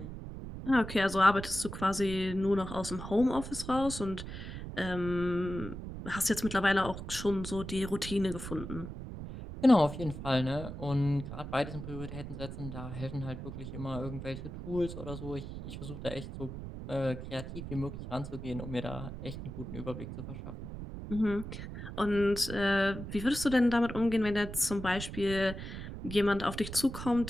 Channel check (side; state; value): right; noise; rumble, 9 dB below the sound